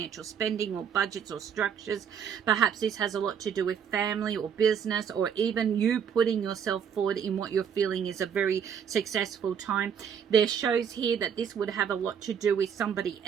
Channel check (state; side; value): quieter; left; 7.7 dB